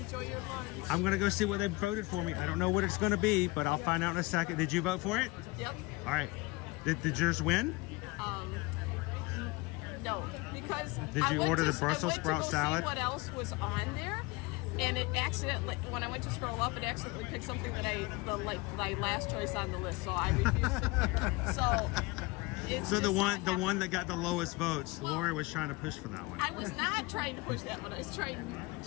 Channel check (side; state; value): right; quieter; 23.7 dB